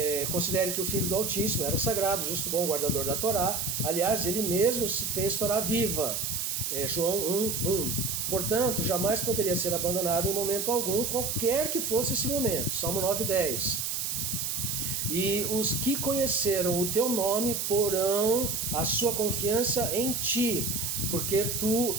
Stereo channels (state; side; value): noise; right; hiss, 1 dB below the sound